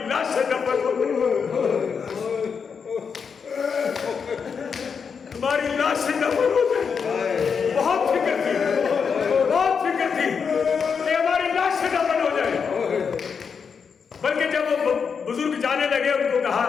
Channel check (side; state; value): right; quieter; 6.1 dB